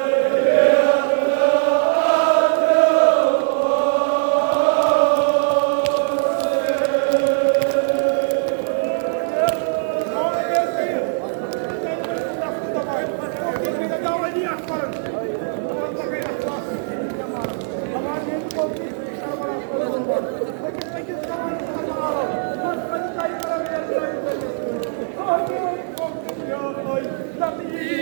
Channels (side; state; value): left; silent; digital silence